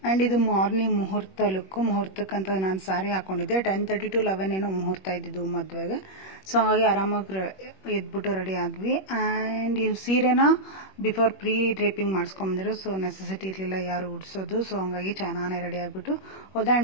ಆ್ಯಂಡ್ ಇದು ಮಾರ್ನಿಂಗ್ ಮುಹೂರ್ತ ಲುಕ್ಕು. ಮುಹೂರ್ತಕ್ಕಂತ ನಾನು ಸಾರಿ ಹಾಕೊಂಡಿದ್ದೆ 10:30 to 11 ಏನೋ ಮುಹೂರ್ತ ಇದ್ದಿದ್ದು ಮದುವೆಗೆ. ಸೊ ಹಾಗಾಗಿ ಆರಾಮಾಗಿ ಎದ್ಬಿಟ್ಟು ರೆಡಿ ಆದ್ವಿ. ಆ್ಯಂಡ್ ಈ ಸೀರೆನ ಬಿಫೋರ್ ಪ್ರೀ ಡ್ರೇಪಿಂಗ್ ಮಾಡಿಸ್ಕೊಂಬಂದಿರೋ, ಸೊ ನೆಸೆಸಿಟಿ ಇರಲಿಲ್ಲ ಯಾರು ಉಡ್ಸೋದು. ಸೊ ಹಂಗಾಗಿ ಚೆನ್ನಾಗಿ ರೆಡಿ ಆಗಿಬಿಟ್ಟು ಹೋದೆ.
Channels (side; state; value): right; late; 21 ms